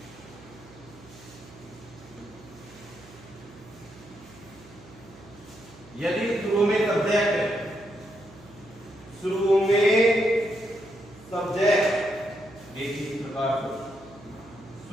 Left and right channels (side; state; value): right; noise; hum, 21 dB below the sound